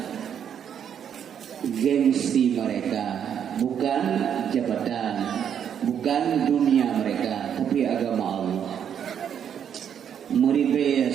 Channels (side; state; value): left; quieter; 8.6 dB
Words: gengsi mereka, bukan jabatan, bukan dunia mereka, tapi agama Allah. Meribaya